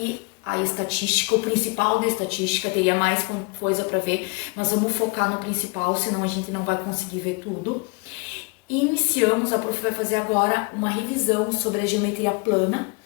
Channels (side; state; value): right; quieter; 31.8 dB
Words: a estatística. O principal da estatística, teria mais coisa para ver, nós vamos focar no principal, senão a gente não vai conseguir ver tudo. Iniciamos, a Prof vai fazer agora uma revisão sobre a geometria plana,